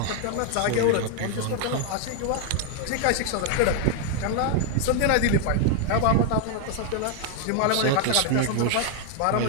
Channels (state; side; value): different; both; correlation 0.00